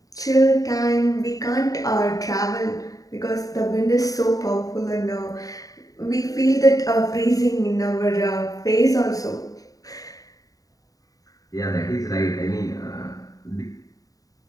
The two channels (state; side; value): late; right; 0.17 ms